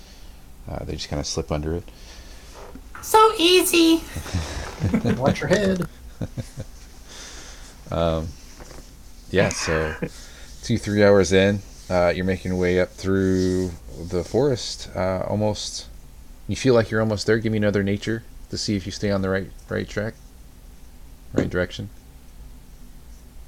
they just kind of slip under it. So easy. Watch your head. Yeah, so 2-3 hours in, you're making your way up through the forest. Almost, you feel like you're almost there. Give me another nature to see if you stay on the right track, right direction.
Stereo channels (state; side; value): identical; both; correlation 1.00